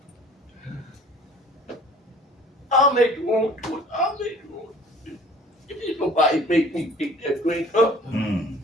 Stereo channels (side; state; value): both; normal; correlation 0.50